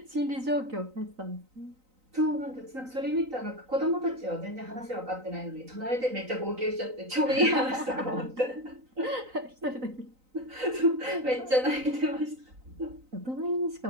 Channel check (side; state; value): left; late; 3.9 ms